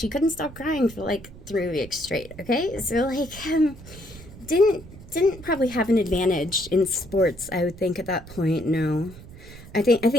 couldn't stop crying for like 3 weeks straight. Okay. So like, didn't probably have an advantage in sports, I would think at that point. No, I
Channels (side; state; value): right; noise; rumble, 17 dB below the sound